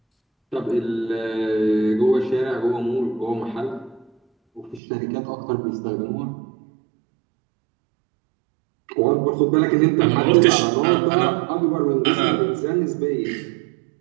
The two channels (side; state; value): left; drops out; at 4.8 s